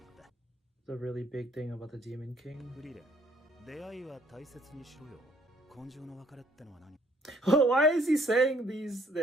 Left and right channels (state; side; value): normal; both; correlation 0.63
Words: った。 the really big thing about the Demon King. フリーレン、出会いは大切にしろよ。根性の別れってのは何？ Why is he saying these